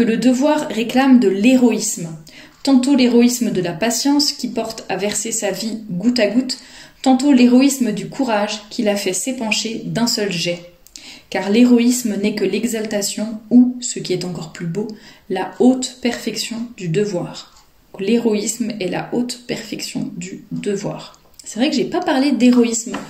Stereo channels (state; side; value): identical; both; correlation 1.00